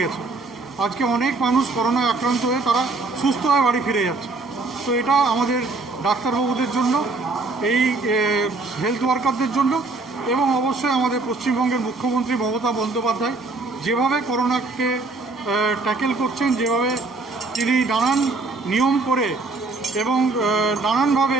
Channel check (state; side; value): quieter; left; 3.6 dB